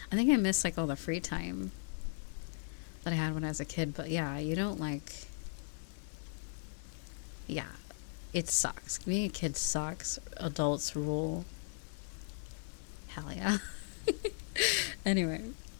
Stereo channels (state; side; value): silent; right; digital silence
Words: I think I miss, like, all the free time that I had when I was a kid. But, yeah, you don't, like... Yeah, it sucks. Being a kid sucks. Adults rule. Hell yeah. Anyway.